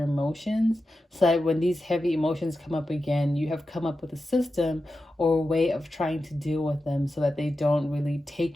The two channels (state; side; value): normal; both; correlation 0.91